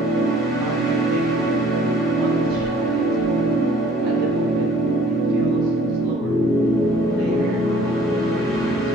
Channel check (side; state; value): both; normal; correlation 0.55